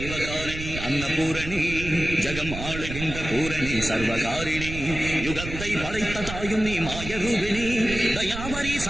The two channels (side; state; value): right; noise; rumble, 8 dB below the sound